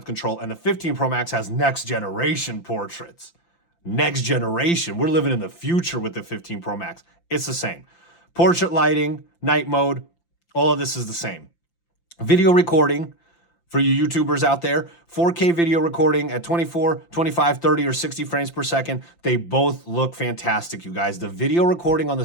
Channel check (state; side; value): late; right; 5.8 ms